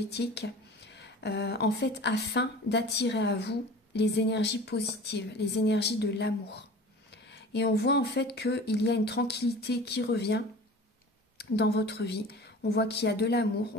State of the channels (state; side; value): normal; both; correlation 0.40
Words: en fait afin d'attirer à vous les énergies positives, les énergies de l'amour. Et on voit en fait qu'il y a une tranquillité qui revient dans votre vie. On voit qu'il y a de l'amour,